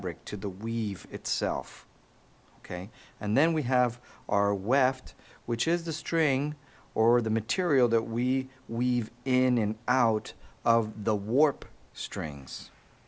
to the weave itself. Okay? And then we have our weft, which is the string or the material that we weave in and out of the warp strings.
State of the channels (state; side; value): identical; both; correlation 1.00